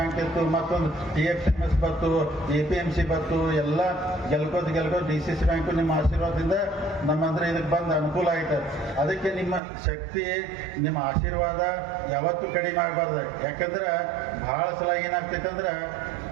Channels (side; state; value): left; drops out; at 9.6 s